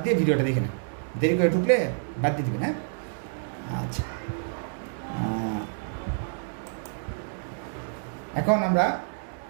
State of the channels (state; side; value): silent; left; digital silence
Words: দিয়ে ভিডিওটা দেখে নেন, দেরি করে ঢুকলে বাদ দিয়ে দেবেন। হ্যাঁ, আচ্ছা, এখন আমরা